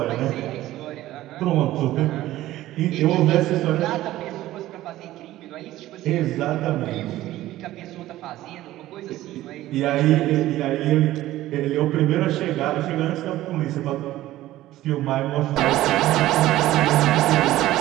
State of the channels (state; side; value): quieter; left; 15.3 dB